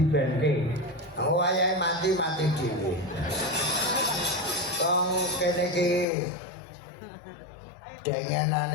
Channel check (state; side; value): drops out; right; at 6.1 s